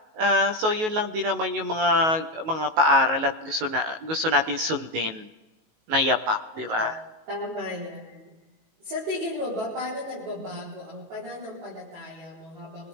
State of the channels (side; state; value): left; late; 19 ms